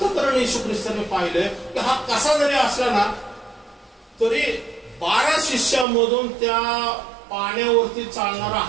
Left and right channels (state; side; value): drops out; left; at 5.9 s